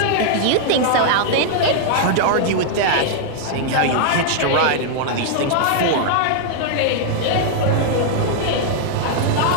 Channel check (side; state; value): both; different; correlation -0.01